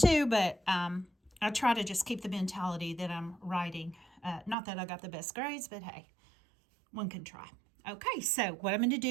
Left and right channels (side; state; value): left; drops out; at 4.5 s